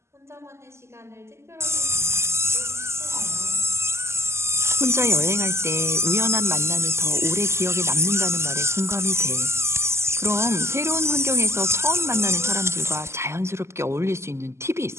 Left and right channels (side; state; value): left; late; 0.13 ms